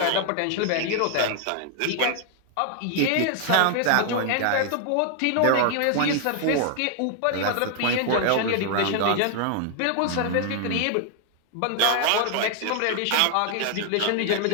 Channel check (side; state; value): both; different; correlation 0.00